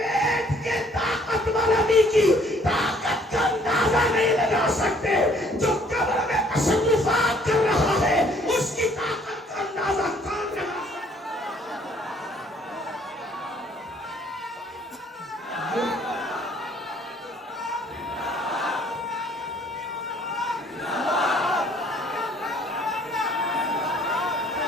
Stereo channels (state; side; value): normal; both; correlation 0.61